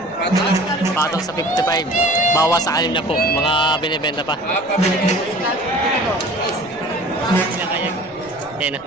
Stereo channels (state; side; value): noise; left; rumble, 29 dB below the sound